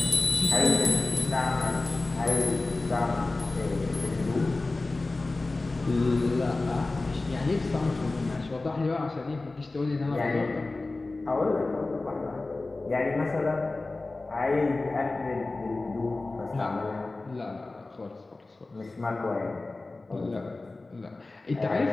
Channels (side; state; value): right; quieter; 3.3 dB